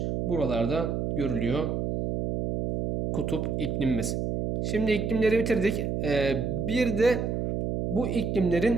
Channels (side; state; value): right; noise; hum, 1 dB below the sound